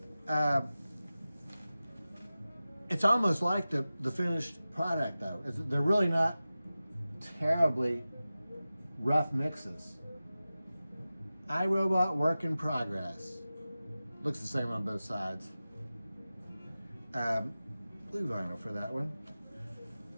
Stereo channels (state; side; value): inverted; both; correlation -0.96